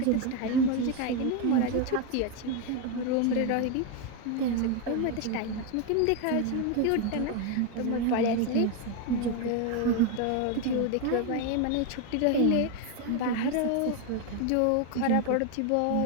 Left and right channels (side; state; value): both; different; correlation 0.01